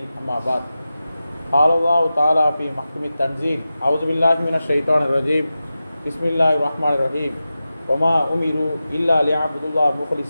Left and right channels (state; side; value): inverted; both; correlation -0.93